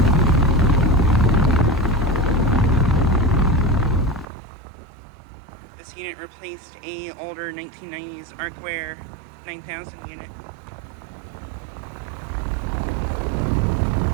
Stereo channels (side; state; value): left; drops out; at 4.2 s